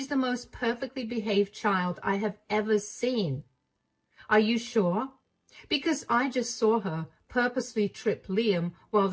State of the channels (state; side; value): identical; both; correlation 1.00